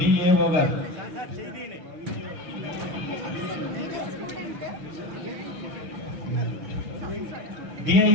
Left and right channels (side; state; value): left; late; 6.7 ms